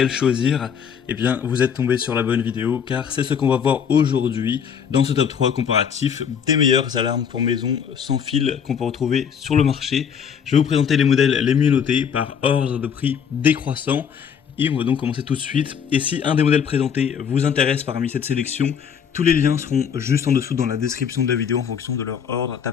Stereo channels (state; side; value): quieter; right; 7.5 dB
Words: choisir. Eh bien, vous êtes tombé sur la bonne vidéo, car c'est ce qu'on va voir aujourd'hui dans ce top 3 comparatif des meilleures alarmes pour maison sans fil qu'on peut retrouver sur le marché. Je vais vous présenter les modèles les mieux notés par ordre de prix décroissant. Et on va donc commencer tout de suite. Et si un des modèles présentés vous intéresse parmi cette sélection, tous les liens seront juste en dessous dans la description de la vidéo en fonction de leur ordre